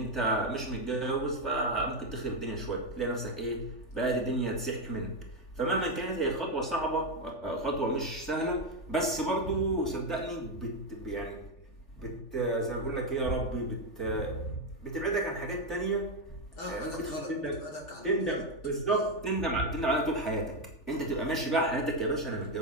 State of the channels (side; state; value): right; late; 3.4 ms